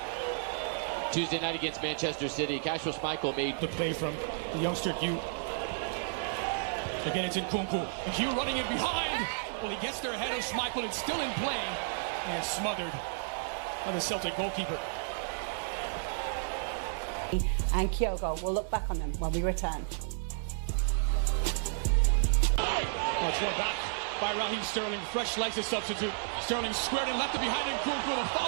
Tuesday night against Manchester City, Kasper Schmeichel made the play from the youngster Hugh. Again, it's Nkunku. And Hugh running in behind. Well, he gets there ahead of Schmeichel. It's still in play and smothered by the Celtic goalkeeper. And Kyogo will look back on them when we return. It's one back by Raheem Sterling. Fresh legs to substitute. Sterling squared and left it behind Nkunku with a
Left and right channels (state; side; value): silent; left; digital silence